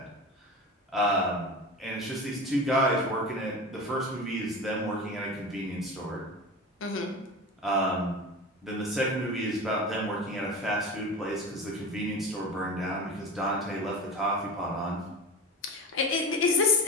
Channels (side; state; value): both; normal; correlation 0.28